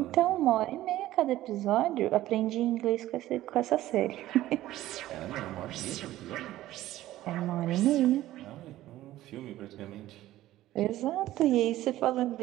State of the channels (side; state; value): left; quieter; 14.9 dB